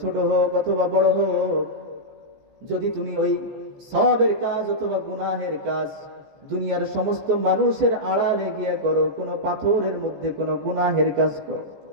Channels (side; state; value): left; late; 14 ms